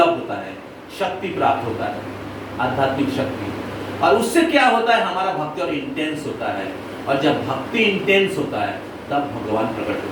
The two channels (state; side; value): identical; both; correlation 1.00